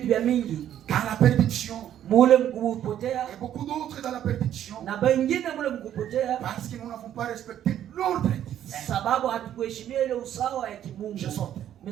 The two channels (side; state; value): left; quieter; 10.9 dB